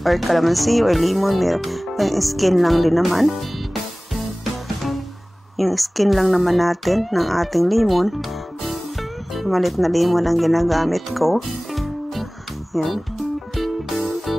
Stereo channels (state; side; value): normal; both; correlation 0.98